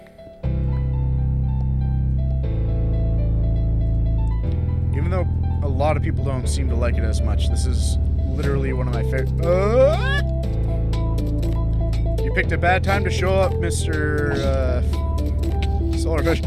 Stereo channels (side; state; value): both; identical; correlation 1.00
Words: Even though a lot of people don't seem to like it as much, this is literally one of my favorite. You picked a bad time to show up, Mr. Solarfish.